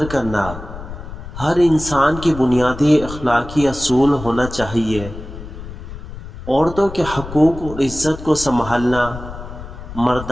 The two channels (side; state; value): left; noise; rumble, 12 dB below the sound